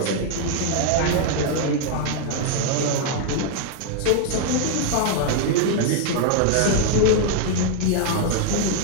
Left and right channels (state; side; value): different; both; correlation 0.00